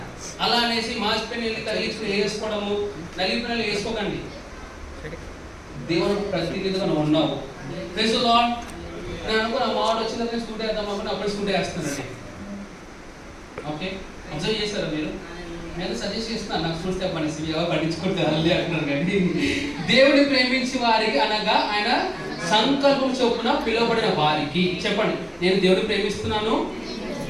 అలా అనేసి మాసిపోయిన తగిలించుకుని వేసుకోవడము, నలిపిన వేసుకోకండి. దేవునికి ప్రతినిధిగా నువ్వు ఉన్నావు. Praise the Lord. నేను అనుకున్న మాట వచ్చిందని స్కూటీ వేద్దాం అనుకుని అప్పుడే స్కూటీ వేస్తున్నానండి. ఓకే, అబ్జర్వ్ చేశారా మీరు? నేను సజెస్ట్ చేస్తున్నాను, నాకు స్కూల్ స్టెప్ అనేసి ఎవరు పట్టించుకుంటారు అంటున్నారు. కానీ దేవుని ప్రేమించి వారికి అనగా ఆయన సంకల్పం చొప్పున పిలువబడిన వారికి. చెప్పండి, నేను దేవుని ప్రేమిస్తున్నాను.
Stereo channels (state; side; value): identical; both; correlation 1.00